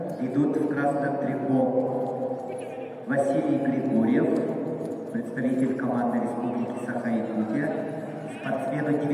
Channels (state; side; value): identical; both; correlation 1.00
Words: идут в красном трико Василий Григорьев, представитель команды Республики Саха-Якутия, спортсмену